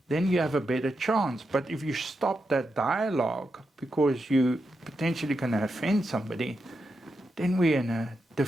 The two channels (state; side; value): normal; both; correlation 0.86